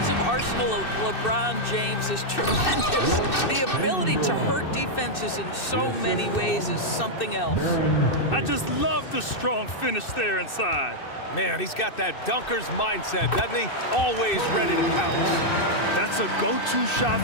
arsenal of LeBron James is tremendous. The ability to hurt defenses in so many ways is something else. I just love the strong finish there inside. Man, he's got that dunker's mindset, doesn't he? Always ready to pounce. That's a go-to shot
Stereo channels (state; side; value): late; right; 2.6 ms